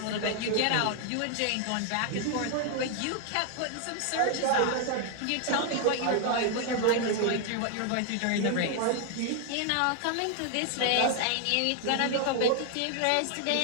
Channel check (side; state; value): both; different; correlation 0.00